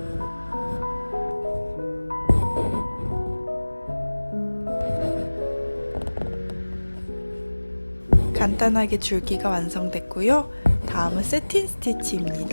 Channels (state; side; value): inverted; both; correlation -1.00